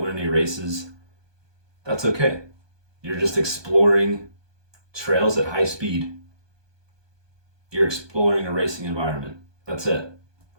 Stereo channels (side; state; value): left; late; 1.2 ms